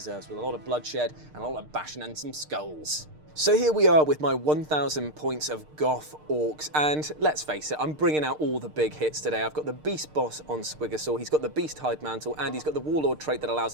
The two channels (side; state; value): left; late; 6.6 ms